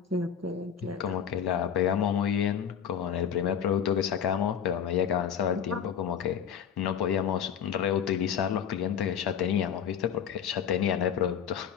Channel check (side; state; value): right; quieter; 8.2 dB